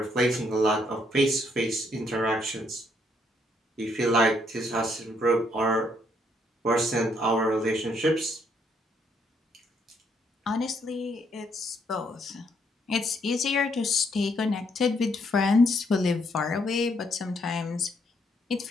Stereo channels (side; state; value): both; normal; correlation 0.71